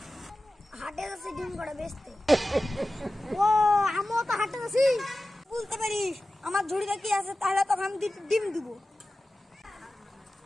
হাটে যাচ্ছি ডিম করে বেচতে। ও আমিও তো হাটে যাচ্ছি। বলতে পারিস আমার ঝুড়িতে কি আছে, তাহলে তখন আমি ডিম দিব।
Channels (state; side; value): normal; both; correlation 0.95